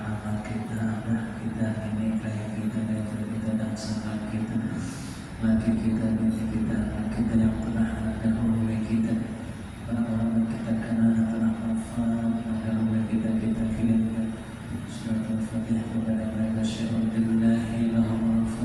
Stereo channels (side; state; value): both; identical; correlation 1.00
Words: mama kita, abah kita, nenek kayak kita dan sahabat kita, laki kita, nenek kita, anak kita yang pernah dahulu kita, orang-orang yang kita kenal yang pernah wafat, dahulu kita kirimkan surat Al-Fatihah kepada mereka. Syahadu billahi lahumul